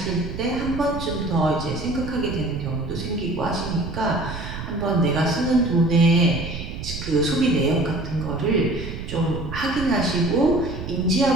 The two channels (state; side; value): noise; right; rumble, 8 dB below the sound